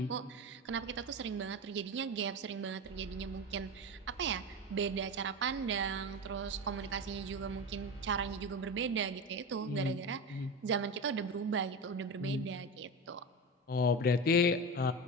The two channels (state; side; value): normal; both; correlation 0.23